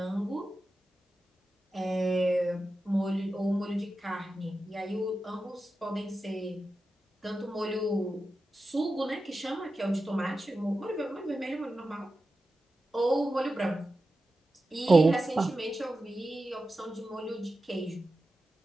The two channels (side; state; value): both; normal; correlation 0.92